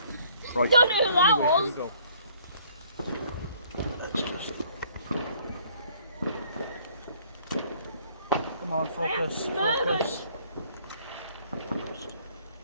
Right. Don't know who that was. Go. Come on, focus, focus.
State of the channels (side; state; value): both; inverted; correlation -0.61